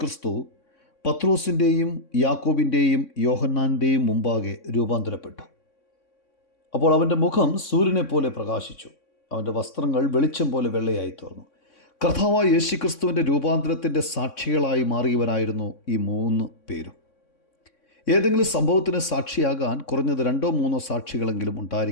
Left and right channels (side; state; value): right; late; 3.6 ms